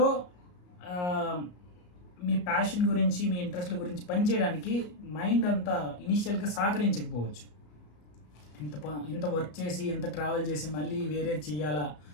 మీ ప్యాషన్ గురించి, మీ ఇంట్రెస్ట్ల గురించి పనిచేయడానికి మైండ్ అంతా ఇనీషియల్గా సహకరించకపోవచ్చు. ఇంత వర్క్ చేసి, ఇంత ట్రావెల్ చేసి మళ్ళీ వేరేది చేయాలా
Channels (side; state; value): right; late; 34 ms